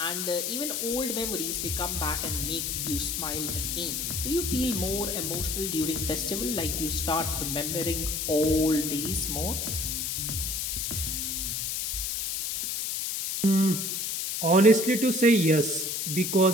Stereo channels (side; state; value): left; noise; hiss, 2 dB below the sound